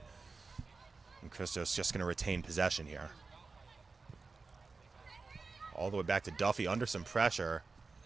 And Christos just going to retain possession here. All the way back to Duffy under some pressure.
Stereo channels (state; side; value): quieter; left; 4.2 dB